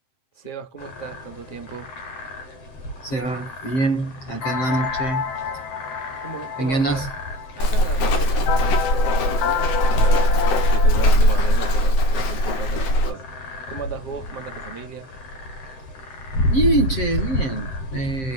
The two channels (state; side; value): late; right; 7.8 ms